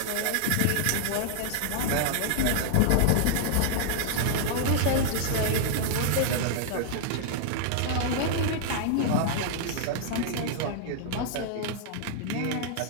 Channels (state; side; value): different; both; correlation -0.01